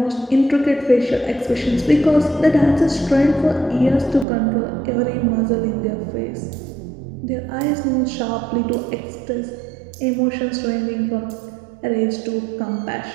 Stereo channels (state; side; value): drops out; left; at 4.2 s